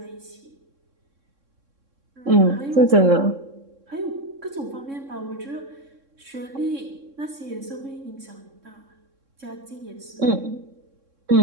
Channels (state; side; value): late; left; 3.6 ms